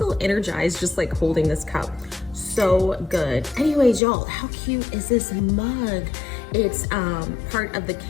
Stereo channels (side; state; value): right; drops out; at 4.0 s